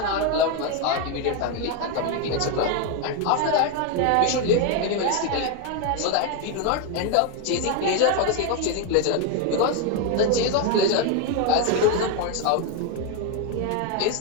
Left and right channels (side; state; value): both; different; correlation 0.01